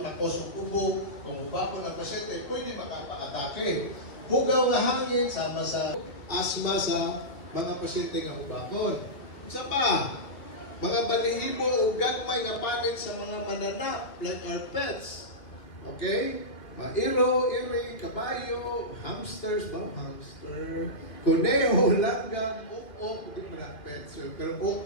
of ubo, kung hubapon ng pasyente, pwede makapa-atake. Hugaw na hangin sama sa asthma sa mga pasyente nga hubakon. Isa pa, mga balihibo o gagmay nga panit sa mga mananap like our pets. Okay? Mairo, iri, kabayo, hamsters, hamster, kuneho, langgam, ukok, hindi mo lang pets. Pero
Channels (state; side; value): late; right; 2.3 ms